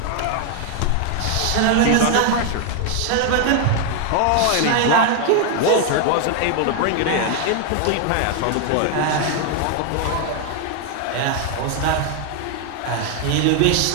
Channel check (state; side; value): different; both; correlation 0.00